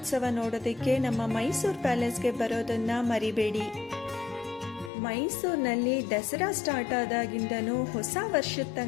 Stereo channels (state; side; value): drops out; right; at 4.9 s